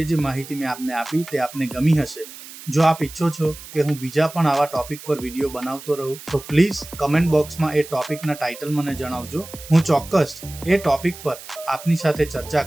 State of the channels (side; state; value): right; noise; hiss, 15 dB below the sound